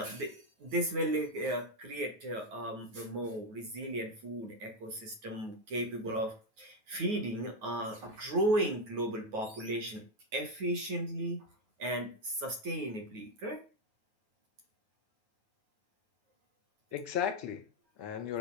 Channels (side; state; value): left; late; 9.4 ms